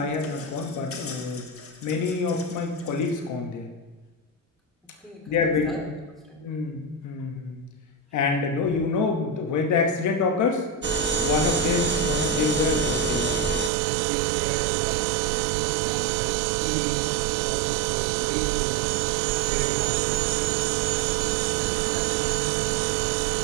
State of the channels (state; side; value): drops out; left; at 13.7 s